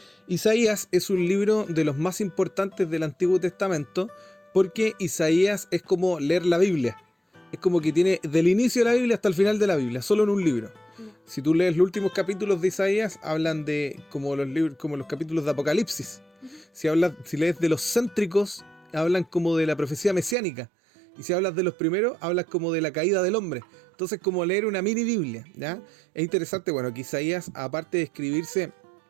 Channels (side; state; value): left; drops out; at 20.4 s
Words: Isaías es un libro de los más importantes del Antiguo Testamento porque Isaías es como leer la Biblia. Es como que tiene del inicio de la Biblia hasta el final de la Biblia, solo en un libro. Si tú lees los últimos capítulos de Isaías, hablan de como los capítulos de Apocalipsis. Si lees de los céntricos, hablan como de la profecía mesiánica. Y si hablas de los primeros, hablas como de la caída del hombre. Entonces, como leer una mini Biblia, ¿ya? Es interesante, bueno, que Isaías, aparte de escribirse